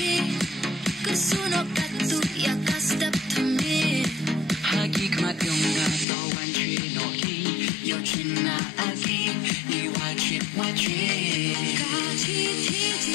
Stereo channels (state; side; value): drops out; right; at 6.1 s